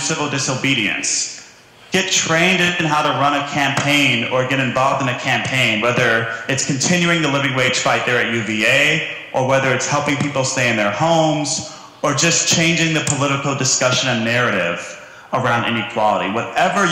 disobedience, get trained in how to run a campaign or get involved in a campaign, whether it's continuing the living wage fight there at UVA, or whether it's helping people stay in their homes, or just changing the political discussion and narrative around inequality. Whatever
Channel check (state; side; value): identical; both; correlation 1.00